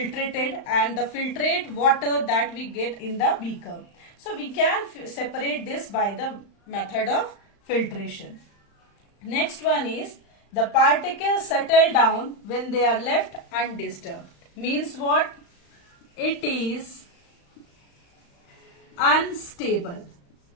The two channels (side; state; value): right; late; 35 ms